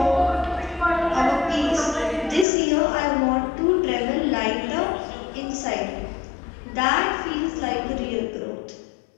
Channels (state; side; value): drops out; right; at 2.5 s